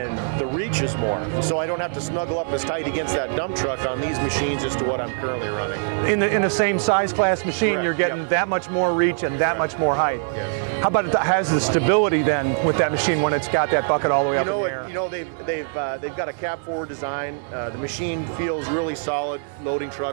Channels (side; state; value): left; silent; digital silence